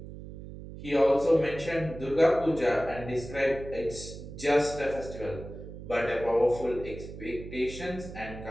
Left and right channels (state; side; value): noise; right; hum, 12 dB below the sound